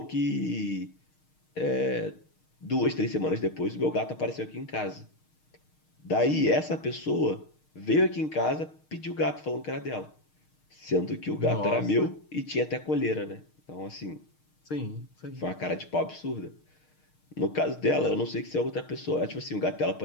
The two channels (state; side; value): late; right; 6.5 ms